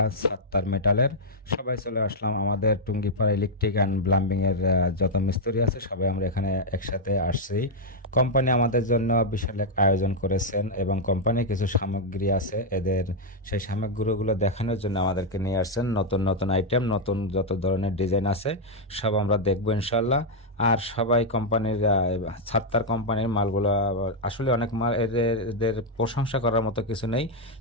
সাত্তার মেটালের। সবাই চলে আসলাম আমাদের টুঙ্গিপাড়া ইলেকট্রিক অ্যান্ড প্লাম্বিং এর যত মিস্ত্রি আছে সবাই আমরা এখানে একসাথে আসছি। কোম্পানি আমাদের জন্য বিশাল এক আয়োজন করেছেন এবং কোম্পানির কিছু সামগ্রী আছে, এদের সেই সামগ্রীগুলো দেখানোর জন্য আমাদেরকে নিয়ে আসছেন। নতুন নতুন আইটেম, নতুন যত ধরনের ডিজাইন আছে সব আমরা দেখবো ইনশাল্লাহ। আর সবাই কোম্পানির ছাত্তার কোম্পানির মালগুলো আসলে অনেক মাল, এদের এদের প্রশংসা করার মতো কিছু নেই,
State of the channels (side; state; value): both; normal; correlation -0.02